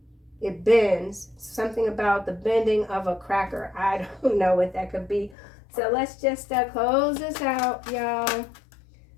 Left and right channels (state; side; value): drops out; right; at 5.4 s